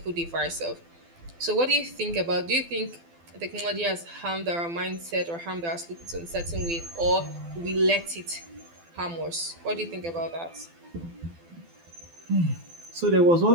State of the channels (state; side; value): late; left; 12 ms